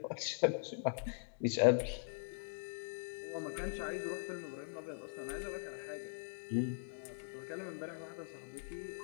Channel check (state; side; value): silent; right; digital silence